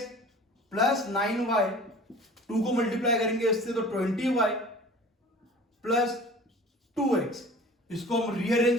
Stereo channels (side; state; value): both; normal; correlation 0.44